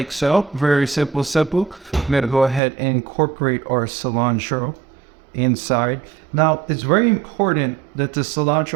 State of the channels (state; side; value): drops out; left; at 2.6 s